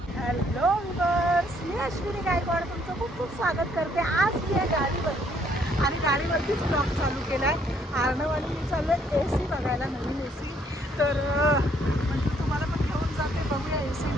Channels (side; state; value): both; normal; correlation 0.66